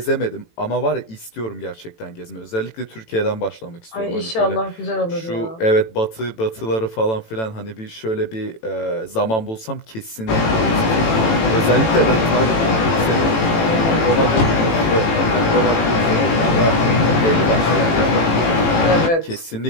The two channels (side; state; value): right; late; 18 ms